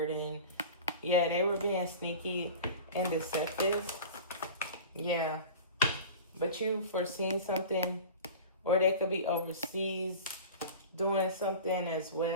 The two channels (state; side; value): inverted; both; correlation -0.36